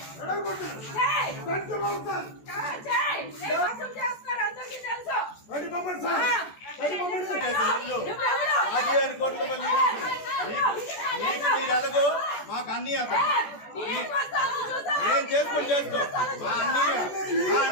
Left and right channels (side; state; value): right; late; 14 ms